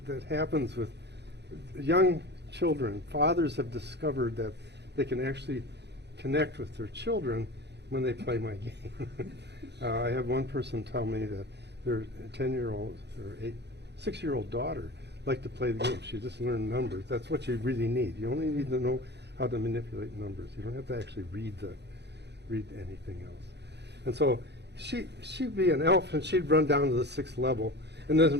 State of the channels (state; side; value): late; left; 0.49 ms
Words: happens with young children. Fathers have discovered that they can actually connect with their children when they play my game. I had one person tell me that their 10-year-old or 6-year-old daughter liked to play the game. She just learned numbers. That's what you really need. You only need to know how to manipulate numbers. You don't have to actually read anything else. And so she'd be an elf, and she'd run down to the 6th level and then